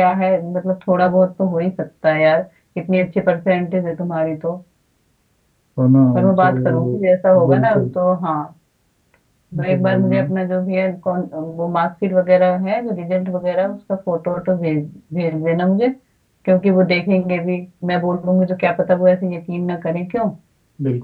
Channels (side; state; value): both; identical; correlation 1.00